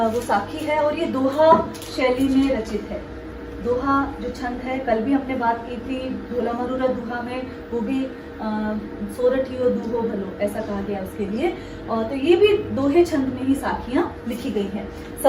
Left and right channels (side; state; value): both; identical; correlation 1.00